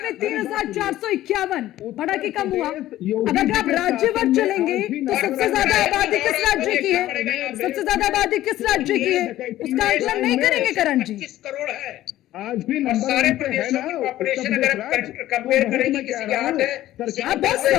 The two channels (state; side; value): quieter; right; 14.3 dB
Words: में 3,451, बढ़ा के कम हुआ। अगर आप राज्यवार चलेंगे तो सबसे ज्यादा आबादी किस राज्य की है, सबसे ज्यादा आबादी किस राज्य की है, उसका आकलन नहीं करेंगे करण जी। 25 करोड़ है आज भी और नंबर सारे 1 पे है प्रदेशों ना की उत्तर पॉपुलेशन प्रदेश अगर राज्य। कंपेयर तो करेंगे मैं किसी कह के रहा हाथ हूं, है, सरकार आप बहुत